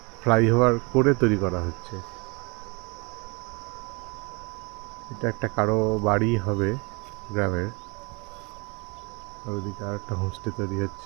ফ্লাইওভার করে তৈরি করা হচ্ছে। এটা একটা কারো বাড়ি হবে গ্রামের। আর ওদিকে আর একটা হোমস্টে তৈরি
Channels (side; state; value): left; quieter; 29.6 dB